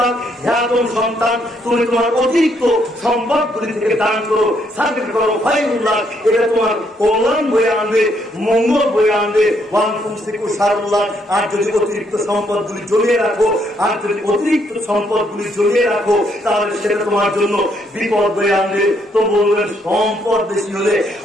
হে আদম সন্তান তুমি তোমার অতিরিক্ত সম্পদগুলি থেকে দান করো, সাদকা করো, খায়রুল্লাহ, এটা তোমার কল্যাণ বয়ে আনবে, মঙ্গল বয়ে আনবে। ওয়ান তুমসিকু শারুল্লাহ, আর যদি অতিরিক্ত সম্পদগুলি জমিয়ে রাখো, আর যদি অতিরিক্ত সম্পদগুলি জমিয়ে রাখো তাহলে সেটা তোমার জন্য বিপদ বয়ে আনবে। তো বলবেন সম্পদ বেশি হলে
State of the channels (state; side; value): normal; both; correlation 0.72